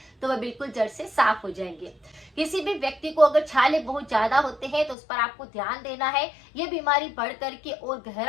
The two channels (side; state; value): right; drops out; at 5.0 s